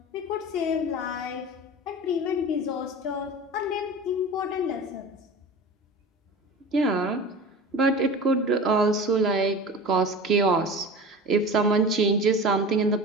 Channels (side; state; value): both; normal; correlation 0.34